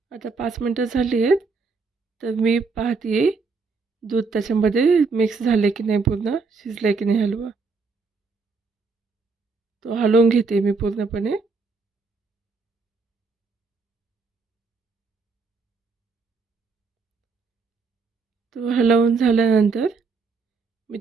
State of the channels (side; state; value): left; quieter; 4.5 dB